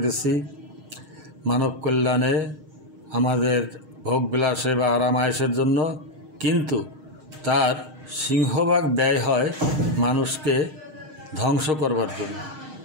মানব কল্যাণে, আমাদের ভোগবিলাসে বা আরামায়েশের জন্য। কিন্তু তার সিংহভাগ ব্যয় হয় মানুষকে ধ্বংস করবার জন্য।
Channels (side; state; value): left; late; 6.4 ms